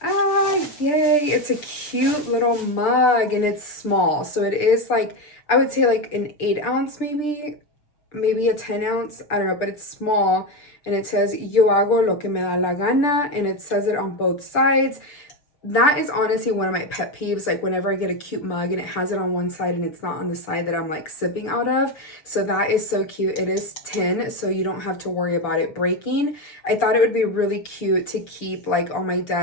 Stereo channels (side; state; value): right; late; 6.8 ms